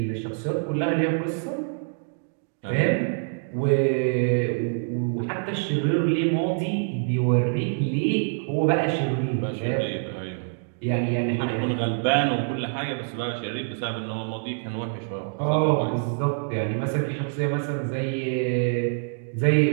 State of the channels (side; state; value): left; silent; digital silence